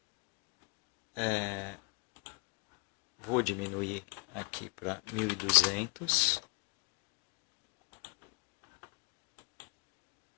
Vou diminuir aqui para 1200.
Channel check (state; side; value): quieter; right; 32.2 dB